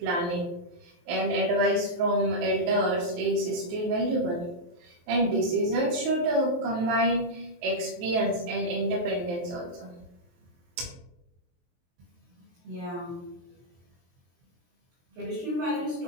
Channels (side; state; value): left; late; 23 ms